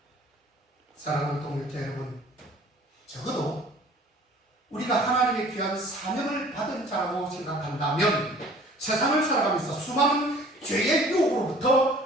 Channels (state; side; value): normal; both; correlation 0.50